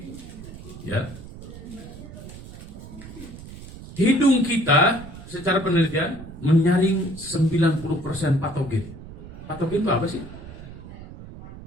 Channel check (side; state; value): right; noise; rumble, 14 dB below the sound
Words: Ya. Hidung kita secara penelitian menyaring 90% patogen. Patogen itu apa sih?